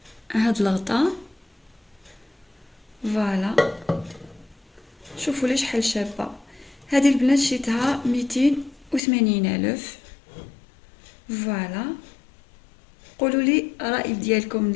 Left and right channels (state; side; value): drops out; right; at 9.0 s